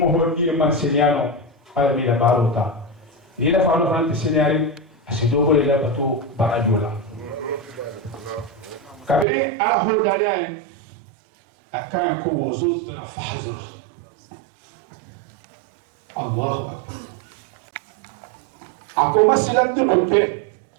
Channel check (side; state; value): left; drops out; at 9.2 s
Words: هو ني من سينيانو على ميلا باروتا إذا فانو فرانتي سينياري أسيدوكو للا بتو باراجولا kabiri ala hodani akaya ko wuzud na fahzar Allahu akbar ako masilan dunke